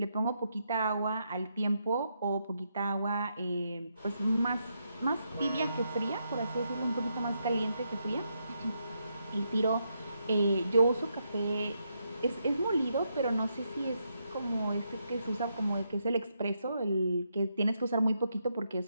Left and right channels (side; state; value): both; inverted; correlation -0.80